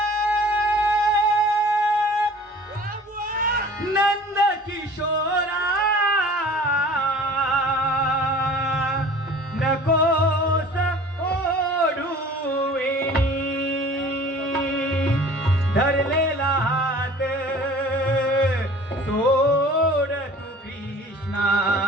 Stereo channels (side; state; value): both; normal; correlation 0.46